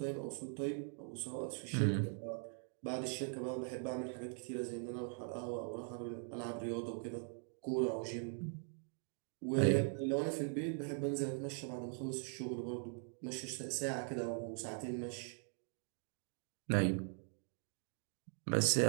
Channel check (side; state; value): left; silent; 50 dB below the other